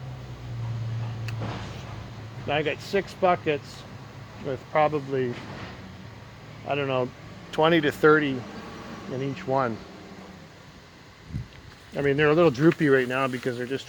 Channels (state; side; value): identical; both; correlation 1.00